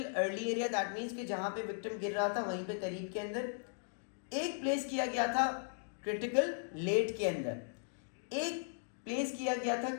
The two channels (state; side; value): silent; right; digital silence